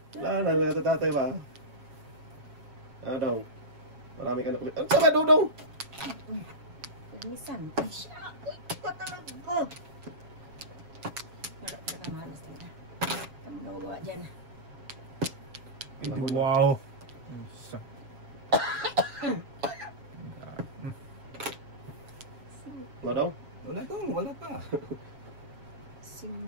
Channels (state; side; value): late; left; 7.3 ms